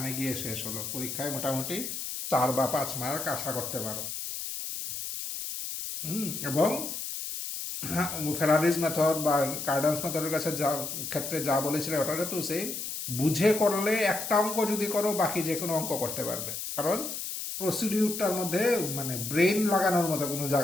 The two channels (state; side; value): noise; left; hiss, 5 dB below the sound